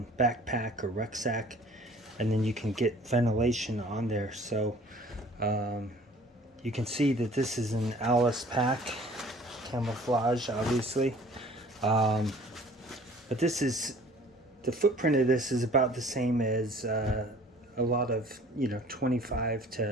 backpack or rucksack, and then you can get ventilation on there. So you can see that this is an Alice pack, camouflage obviously, but this is, the footprint of this is about the same as a lot of 25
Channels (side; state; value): both; normal; correlation 0.51